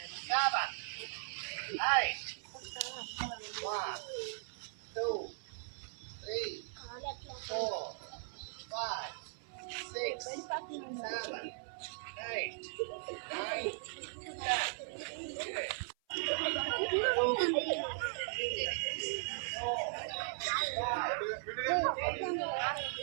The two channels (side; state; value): left; silent; 52 dB below the other